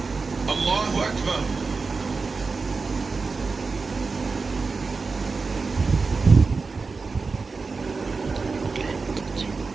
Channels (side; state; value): left; quieter; 4.4 dB